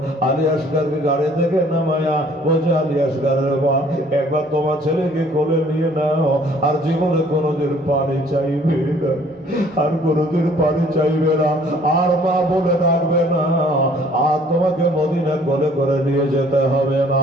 আলী আসগারকে গাড়ি থেকে নামায়া বলছে, আলী আসগারের মা, একবার তোমার ছেলেকে কোলে নিয়ে নাও, আর জীবনে কোনোদিন পানি চাইবে না, আর কোনোদিন পানি চাইবে না, আর মা বলে ডাকবে না, আর তোমাকে মদিনা কোলে করে নিয়ে যেতে হবে না।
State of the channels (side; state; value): both; normal; correlation 0.57